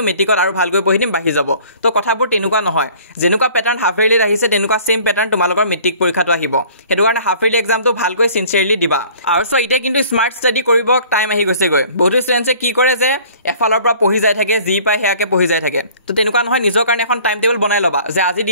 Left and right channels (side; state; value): both; inverted; correlation -0.51